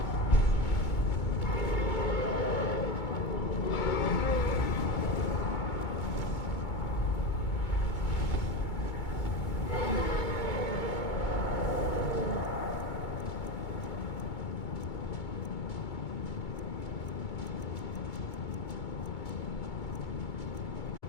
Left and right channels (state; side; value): late; right; 2.2 ms